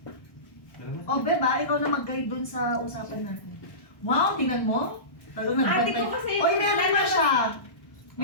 O, Beba, ikaw na mag-guide dun sa usapan natin. Wow, tingnan mo. Talagang Ate nagbantay. ko kasi- Oy, meron na siya.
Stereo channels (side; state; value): right; late; 1.1 ms